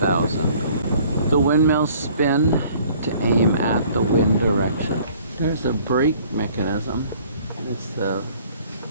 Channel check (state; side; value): inverted; both; correlation -0.55